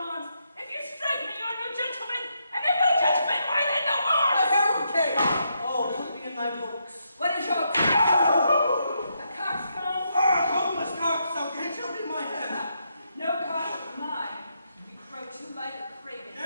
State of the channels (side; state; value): both; inverted; correlation -0.79